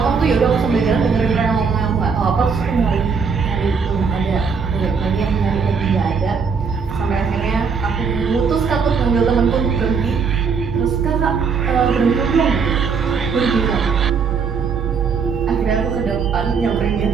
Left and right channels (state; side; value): quieter; left; 5.7 dB